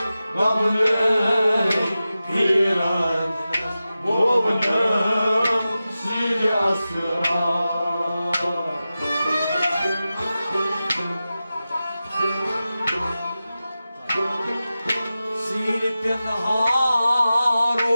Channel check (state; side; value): inverted; both; correlation -0.94